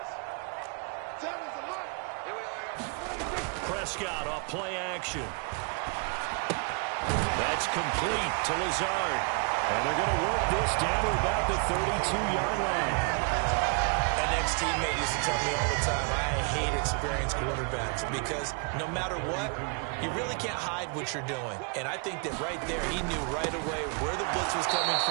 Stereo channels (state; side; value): quieter; left; 35.9 dB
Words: Prescott off play action. That's complete to Lazard. And they're going to work this down to about the 32-yard line. An ex-teammate used to tell me all the time, I hate experienced quarterbacks because no matter what, you really can't hide what you're doing. And I think that right there, he knew right away where the blitz was coming